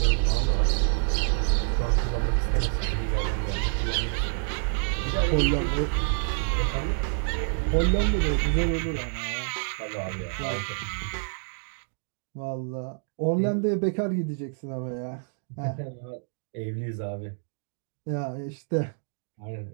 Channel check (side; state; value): left; silent; digital silence